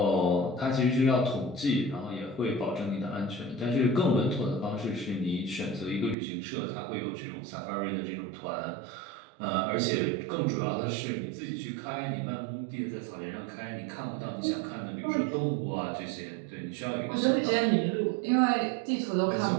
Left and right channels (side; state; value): left; drops out; at 6.2 s